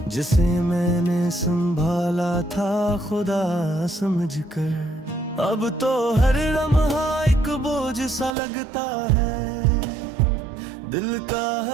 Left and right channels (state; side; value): drops out; left; at 8.3 s